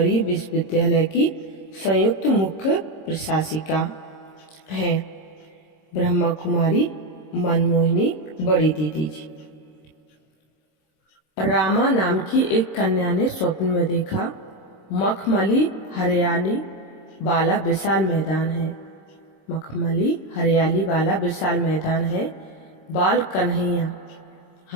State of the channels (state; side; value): late; right; 26 ms